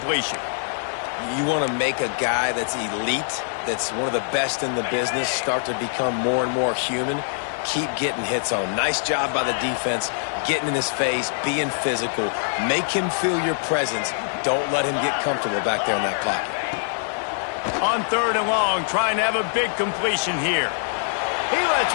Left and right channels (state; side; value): silent; right; 63 dB below the other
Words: You want to make a guy that's elite, that's one of the best in the business, start to become more and more human. Keep getting hits on him. Nice job by the defense, getting in his face, being physical. Make him feel your presence. Don't let him get comfortable back there in that pocket. On 3rd and long, trying to have a big completion here. He